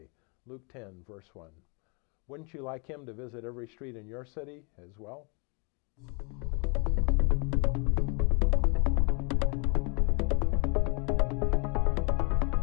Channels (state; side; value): quieter; right; 33.3 dB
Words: Luke 10, verse 1. Wouldn't you like him to visit every street in your city as well?